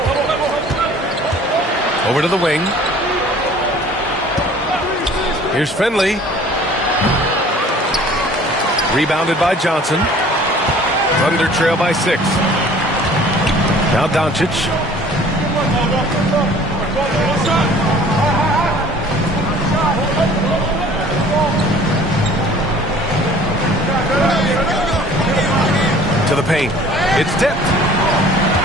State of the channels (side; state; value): both; normal; correlation 0.50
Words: Over to the wing. Here's Finley. Rebounded by Johnson. Thunder trail by 6. Now Doncic. To the paint. It's tipped.